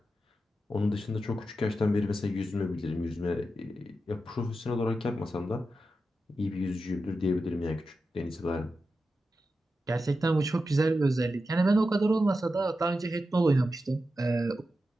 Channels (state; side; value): normal; both; correlation 0.90